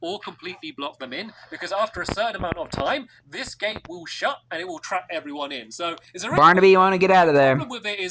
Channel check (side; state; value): both; identical; correlation 1.00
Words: or completely block them in, because after a certain amount of time, this gate will shut, and it will trap everyone in. So, Barnaby, you want to get out of there. The problem with it